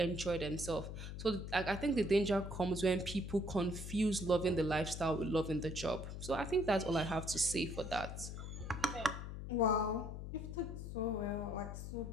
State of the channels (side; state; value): left; noise; hum, 7 dB below the sound